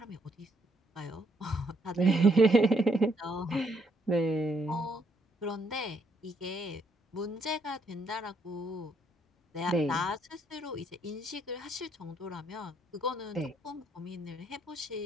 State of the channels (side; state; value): both; normal; correlation 0.71